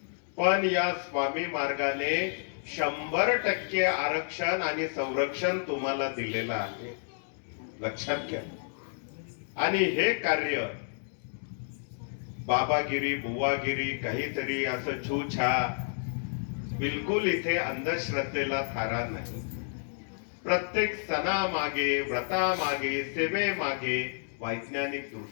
पण या स्वामी मार्गाने 100% आरक्षण आणि संरक्षण तुम्हाला दिलेलं आहे, लक्षात घ्या। आणि हे कार्य बाबागिरी बुवागिरी काहीतरी असं छूछा, बिलकुल इथे अंधश्रद्धेला थारा नाही। प्रत्येक सणामागे, व्रतामागे, सेवेमागे वैज्ञानिक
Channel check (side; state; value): right; silent; digital silence